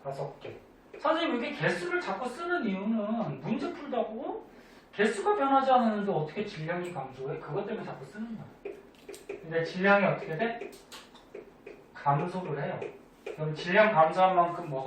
5개. 선생님 이게 개수를 자꾸 쓰는 이유는 문제 풀다고 개수가 변하지 않았는데 어떻게 질량이 감소해? 그것 때문에 자꾸 쓰는 거야. 근데 질량이 어떻게 돼? 감소를 해요. 그럼 질량 감소한 만큼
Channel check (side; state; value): both; identical; correlation 1.00